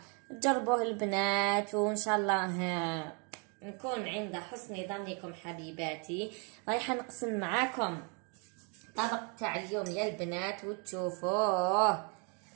تجربوه البنات وان شاء الله نكون عند حسن ظنكم حبيباتي. رايحه نقسم معاكم الطبق تاع اليوم يا البنات وتشوفوه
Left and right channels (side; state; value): left; quieter; 36.3 dB